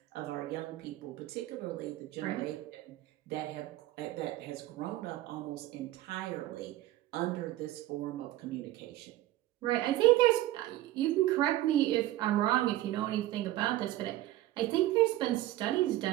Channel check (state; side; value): quieter; left; 15.5 dB